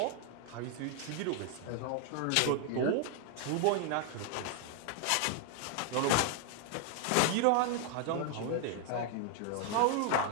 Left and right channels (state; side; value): different; both; correlation 0.00